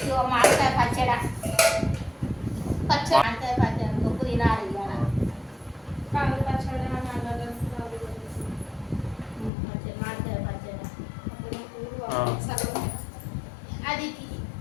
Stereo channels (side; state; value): right; drops out; at 9.5 s